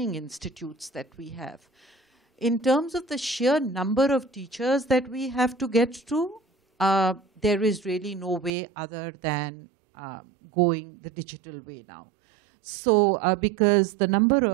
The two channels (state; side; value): drops out; left; at 8.5 s